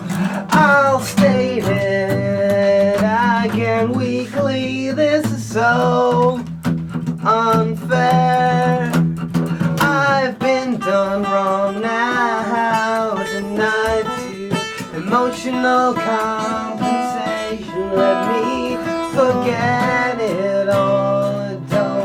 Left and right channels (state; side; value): identical; both; correlation 1.00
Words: I'll state it again weekly, this is so unfair. I've been done wrong now, denied to emotional compensation. Let me forget it all, I